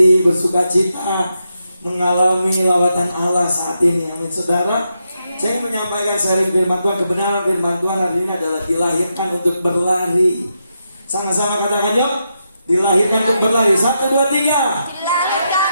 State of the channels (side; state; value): both; inverted; correlation -0.84